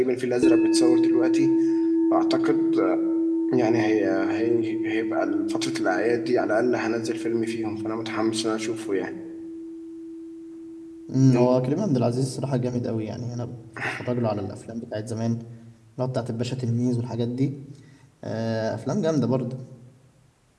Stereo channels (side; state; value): both; identical; correlation 1.00